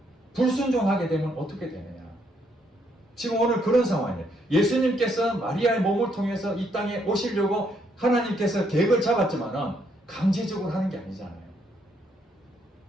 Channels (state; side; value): normal; both; correlation 0.72